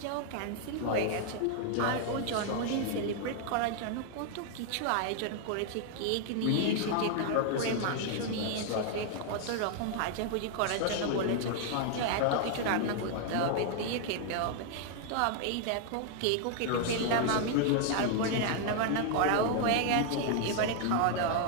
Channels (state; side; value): different; both; correlation 0.00